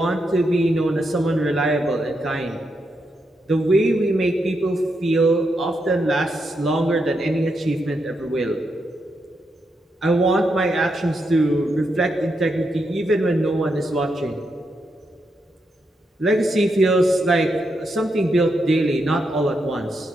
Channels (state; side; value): normal; both; correlation 0.82